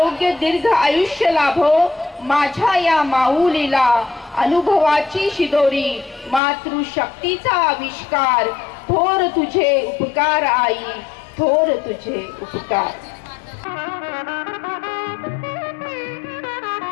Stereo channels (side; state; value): right; drops out; at 6.4 s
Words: दीर्घ आयुष्य लाभो. माझ्या या माऊलीला अनुभवाची शिदोरी, मातृशक्तीचा आविष्कार. थोर तुझे उपकार आई, थोर तुझे उपकार.